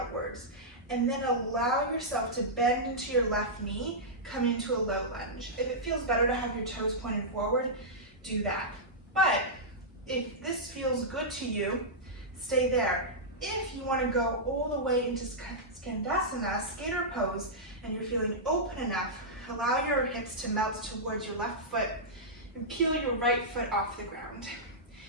And then allow yourself to bend into your left knee, come into a low lunge. If it feels better to have your toes pointed forward, do that. But if this feels good to you, stay there. If you want to go all the way into Skandasana, skater pose, and you're feeling open enough, allow your hips to melt towards your left foot and peel your right foot off the ground.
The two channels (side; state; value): both; normal; correlation -0.12